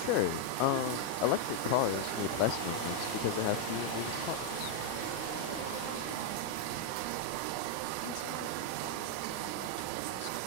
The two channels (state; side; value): different; both; correlation 0.00